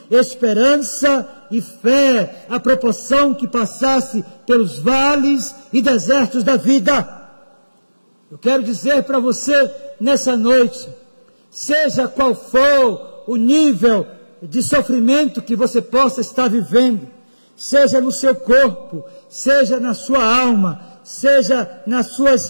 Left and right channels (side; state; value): both; inverted; correlation -1.00